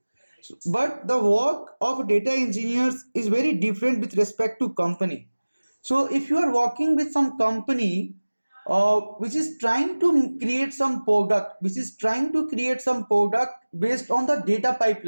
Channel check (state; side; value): inverted; both; correlation -1.00